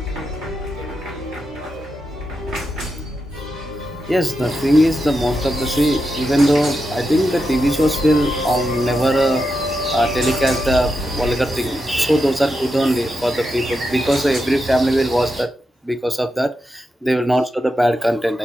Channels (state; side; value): normal; both; correlation 0.87